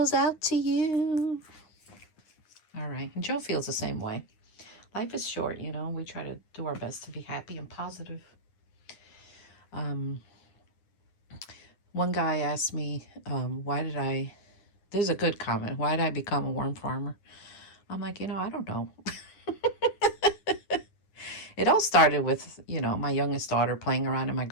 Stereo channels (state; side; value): late; right; 9.8 ms